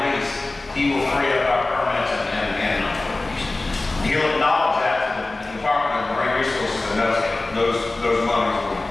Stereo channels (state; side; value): quieter; right; 3.1 dB